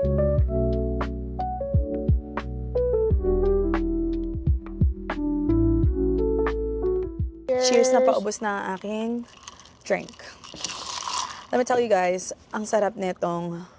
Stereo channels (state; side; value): identical; both; correlation 1.00